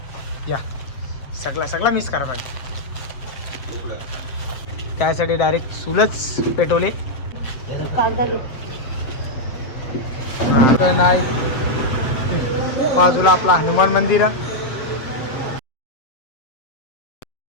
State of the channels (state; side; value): late; right; 7.7 ms